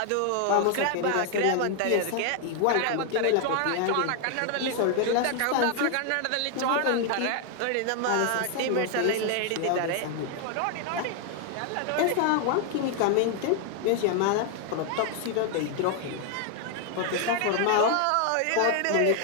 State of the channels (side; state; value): both; different; correlation 0.00